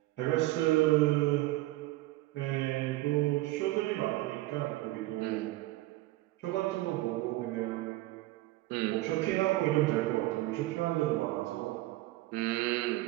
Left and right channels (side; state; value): left; quieter; 18.2 dB